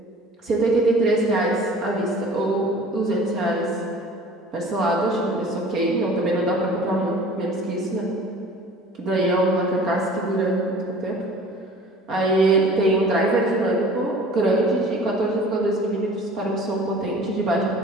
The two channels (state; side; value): normal; both; correlation 0.46